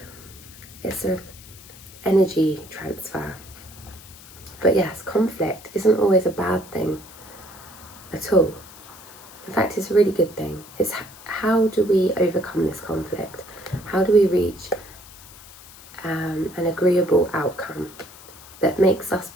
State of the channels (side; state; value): left; noise; hiss, 19 dB below the sound